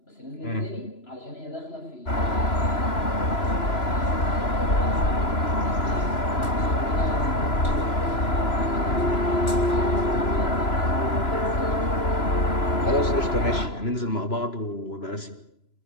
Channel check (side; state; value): right; late; 3.0 ms